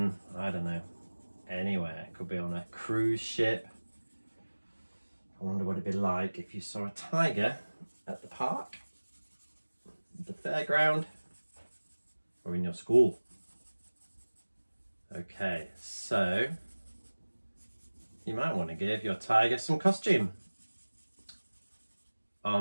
I don't know, anywhere. Could be on a cruise ship. I wonder what it'd be like if you saw a tiger at the park, the fairground, or in your school. Okay, so you might want to give your tiger some costume.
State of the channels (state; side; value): inverted; both; correlation -1.00